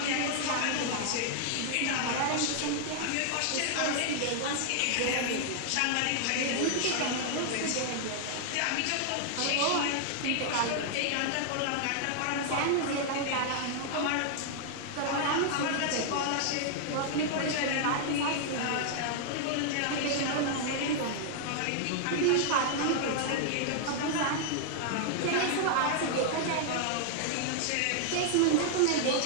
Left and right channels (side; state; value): both; different; correlation -0.01